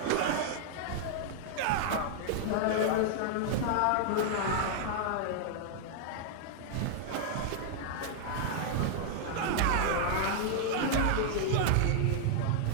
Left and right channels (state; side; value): different; both; correlation -0.01